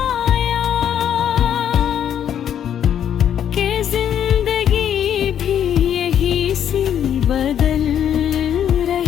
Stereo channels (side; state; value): right; quieter; 9.5 dB